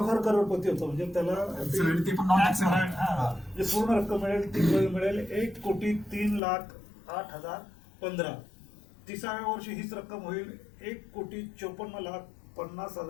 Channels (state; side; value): drops out; right; at 6.4 s